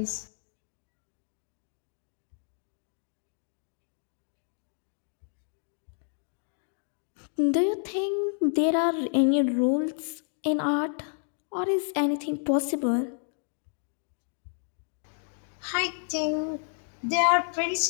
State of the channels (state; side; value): silent; right; 58 dB below the other